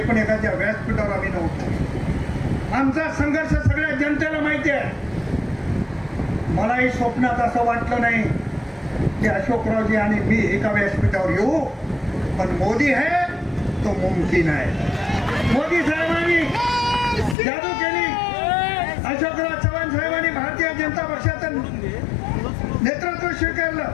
एकाच्या व्यासपीठावर आम्ही नव्हतो. आमचा संघर्ष सगळ्या जनतेला माहिती आहे. मलाही स्वप्नात असं वाटलं नाही की अशोकरावजी आणि मी एका व्यासपीठावर येऊ, पण मोदी है तो मुमकिन आहे. मोदी साहेबांनी जादू केली. अशोकराव चव्हाण साहेबांनी भारतीय जनता पक्षाचं नेतृत्व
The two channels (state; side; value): drops out; right; at 17.4 s